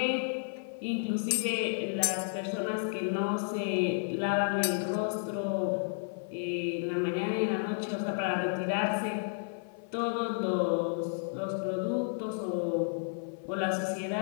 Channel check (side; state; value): right; silent; 56 dB below the other